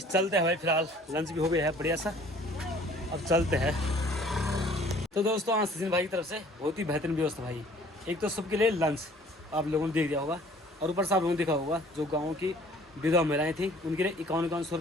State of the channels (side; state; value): both; normal; correlation 0.54